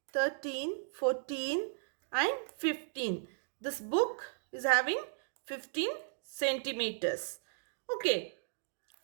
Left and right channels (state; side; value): silent; left; digital silence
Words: 13, 14 and 15. This book is having 15 centimeters. Okay.